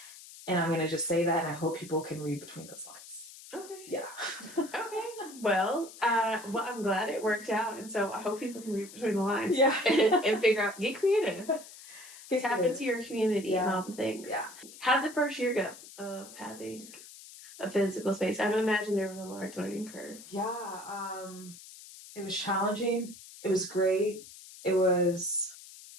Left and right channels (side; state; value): left; noise; hiss, 17 dB below the sound